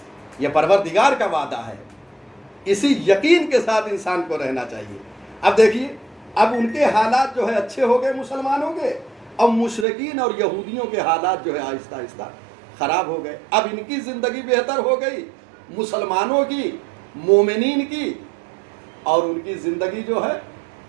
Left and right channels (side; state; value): left; drops out; at 9.9 s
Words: یہ پروردگار کا وعدہ ہے، اسی یقین کے ساتھ انسان کو رہنا چاہیے۔ اب دیکھیے، اب ان کے حالات جو ہے اچھے ہو گئے مسلمانوں کے، اور مشرکین اور یہودیوں کے حالات جو ہے آہستہ آہستہ خراب ہو گئے۔ اب ان کی زندگی بہتر ہو گئی، مسلمانوں کی، مومنین کی، اور ان کی زندگی جو ہے